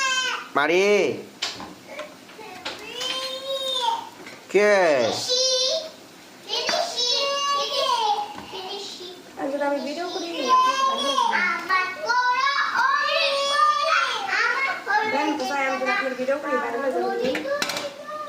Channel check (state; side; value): identical; both; correlation 1.00